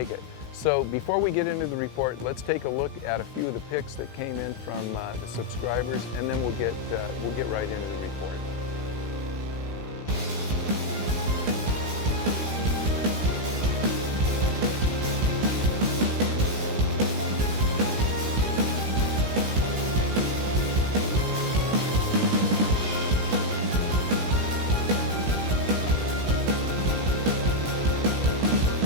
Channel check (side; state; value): left; late; 16 ms